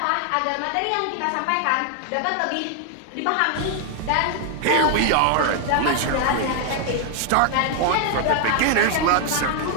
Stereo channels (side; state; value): both; different; correlation 0.00